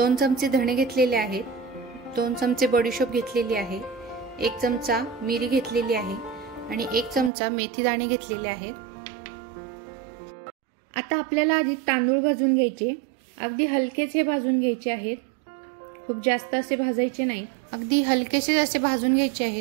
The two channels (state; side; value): drops out; left; at 7.3 s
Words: चमचे धणे घेतलेले आहेत, 2 चमचे बडीशोप घेतलेली आहे, 1 चमचा मिरी घेतलेली आहे आणि 1 चमचा मेथी दाणे घेतलेले आहेत। आता आपल्याला आधी तांदूळ भाजून घ्यायचे, अगदी हलकेसे भाजून घ्यायचे आहेत, खूप जास्त असे भाजायचे नाही, अगदी हलकेसे असे भाजून घ्यायचे